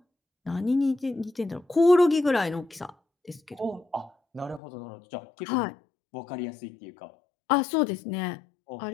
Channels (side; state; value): right; drops out; at 4.6 s